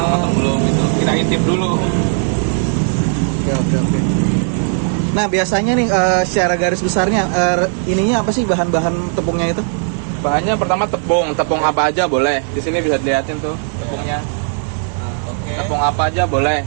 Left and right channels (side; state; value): left; silent; 57 dB below the other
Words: matang belum gitu. Kita intip dulu. Oke. Nah biasanya nih secara garis besarnya ininya apa sih bahan-bahan tepungnya itu? Bahannya pertama tepung apa aja boleh. Di sini bisa dilihatin tuh tepungnya. Tepung apa aja boleh.